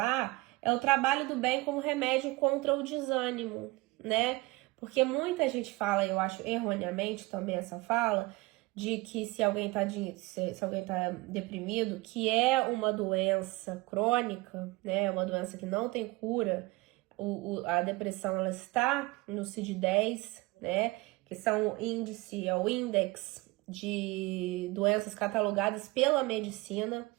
é o trabalho do bem como remédio contra o desânimo, né? Porque muita gente fala, eu acho erroneamente também essa fala, de que se alguém tá deprimido, que é uma doença crônica, né? Uma doença que não tem cura. A depressão, ela está no CID-10, né? Que são o índex de doenças catalogadas pela medicina,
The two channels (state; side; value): quieter; left; 22.4 dB